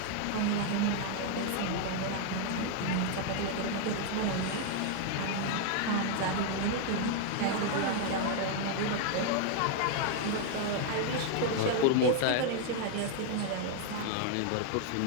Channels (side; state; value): both; different; correlation 0.00